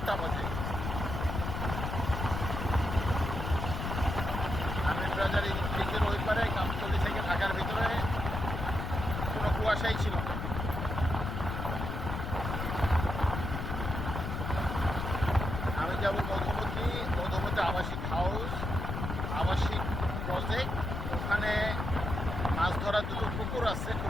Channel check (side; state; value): left; noise; rumble, 3 dB below the sound